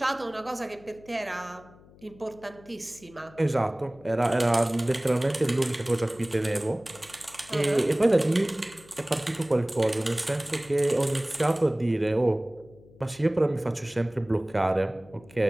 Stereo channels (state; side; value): noise; left; hum, 24 dB below the sound